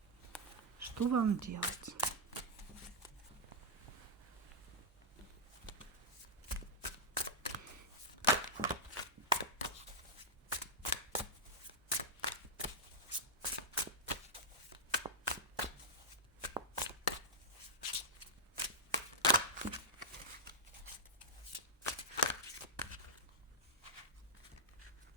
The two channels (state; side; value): normal; both; correlation -0.06